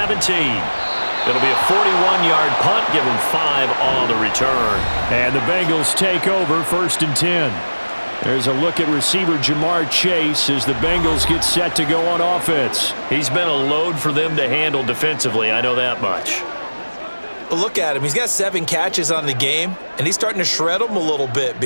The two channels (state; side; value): inverted; both; correlation -1.00